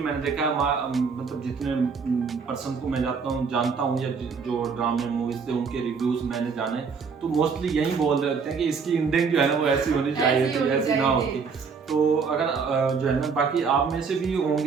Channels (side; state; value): left; quieter; 5.5 dB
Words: मैंने देखा मतलब जितने पर्सन को मैं जानता हूँ या जो ड्रामे मूवीज थे उनके रिव्यूज मैंने जाने, तो मोस्टली यही बोल रहे होते हैं कि इसकी एंडिंग जो है ना वो ऐसी होनी चाहिए थी, ऐसी ना होती। तो अगर जो है ना बाकी आप में से भी